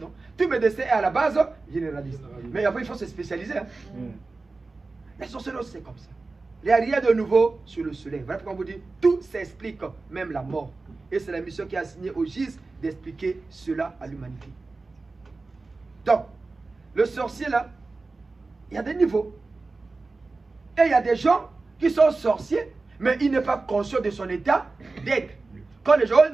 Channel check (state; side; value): quieter; left; 3.6 dB